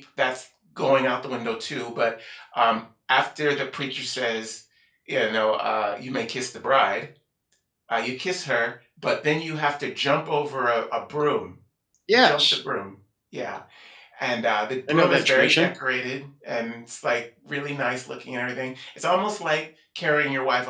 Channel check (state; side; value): identical; both; correlation 1.00